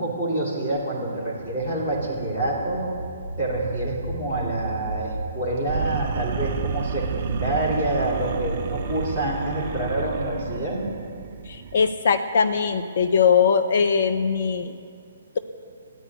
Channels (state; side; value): inverted; both; correlation -0.56